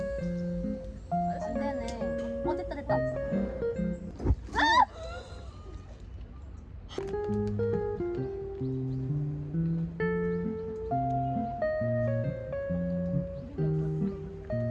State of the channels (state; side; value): identical; both; correlation 1.00